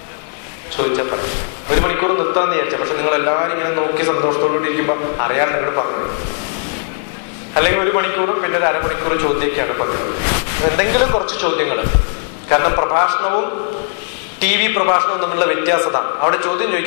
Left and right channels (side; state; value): right; silent; digital silence